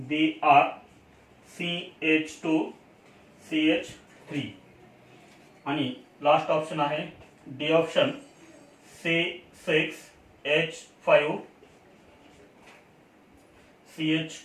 CH2 CH3. आणि लास्ट ऑप्शन आहे D option C6H5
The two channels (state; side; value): identical; both; correlation 1.00